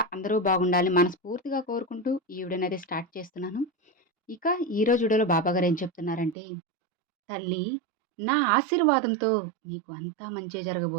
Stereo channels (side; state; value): left; drops out; at 6.4 s